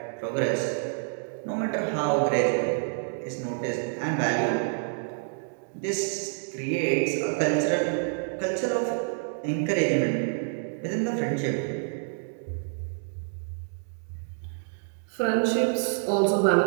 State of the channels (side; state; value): left; silent; 59 dB below the other